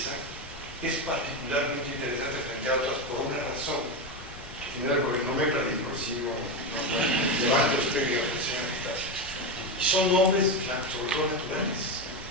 es particularmente interesante frente a otras por una razón. Porque no me perdí, por si no levanto usted y y son nombres, sobre todo naturales.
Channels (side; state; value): both; normal; correlation 0.13